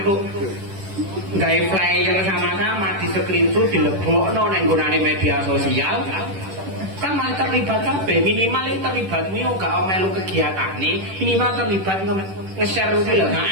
gawe flyer sama-sama di screenshot dilebokno nang nggonane media sosial, kan malah terlibat kabeh. Minimal itu terlibatmu yo gak melu kegiatane, minimal terlibat nge-share kuwi lho.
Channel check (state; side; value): late; left; 10 ms